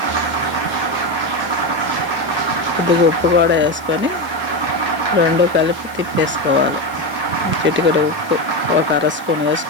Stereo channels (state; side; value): noise; left; hiss, 23 dB below the sound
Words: కొద్దిగా ఉప్పు కూడా వేసుకొని 2 కలిపి తిప్పేసుకోవాలి. చిటికెడు ఉప్పు 1/2 స్పూన్